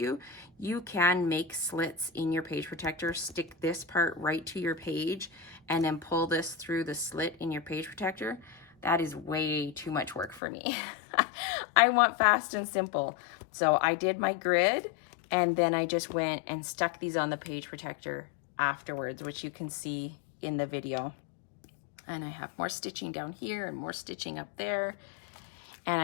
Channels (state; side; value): drops out; right; at 10.4 s